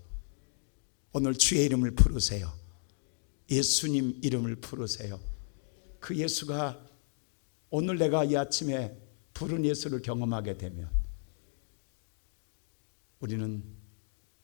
오늘 주의 이름을 부르세요. 예수님 이름을 부르세요. 그 예수가 오늘 내가 이 아침에 부른 예수를 경험하게 되면 우리는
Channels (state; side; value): silent; right; 55 dB below the other